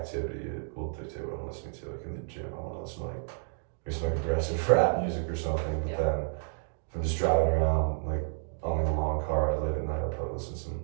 it will dictate what I'm listening to. Like in the gym, I want to listen to like maybe some like aggressive rap music or something, but then if I'm just driving around like on a long car ride late at night, I'll probably listen to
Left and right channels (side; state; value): left; silent; digital silence